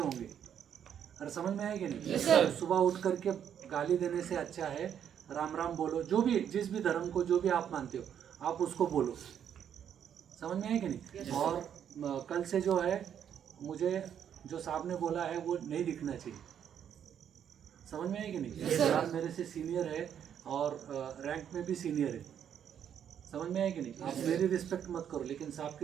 और समझ में है कि नहीं? सुबह उठ करके गाली देने से अच्छा है राम राम बोलो। जो भी जिस भी धर्म को जो भी आप मानते हो आप उसको बोलो। समझ में है कि नहीं? और कल से जो है मुझे जो साहब ने बोला है वो नहीं दिखना चाहिए। समझ में है कि नहीं? साहब मेरे से सीनियर है और रैंक में भी सीनियर है। समझ में है कि नहीं? आप मेरी रिस्पेक्ट मत करो, लेकिन साहब की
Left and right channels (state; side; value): quieter; left; 9.0 dB